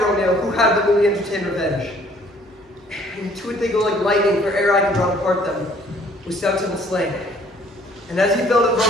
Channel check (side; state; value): both; normal; correlation 0.59